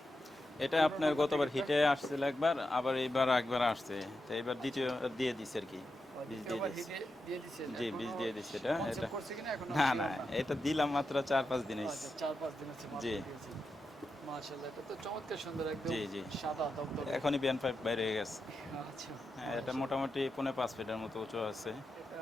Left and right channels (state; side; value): normal; both; correlation 0.88